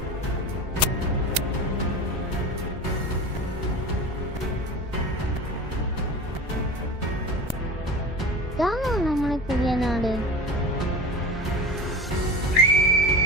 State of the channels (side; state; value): both; normal; correlation 0.32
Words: ഇതാണോ നമ്മുടെ പുതിയ നാട്?